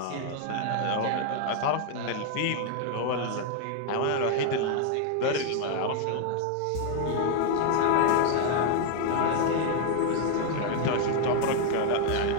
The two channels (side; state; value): both; different; correlation 0.00